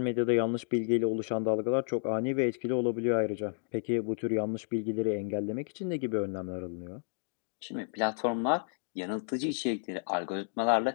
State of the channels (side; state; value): right; silent; digital silence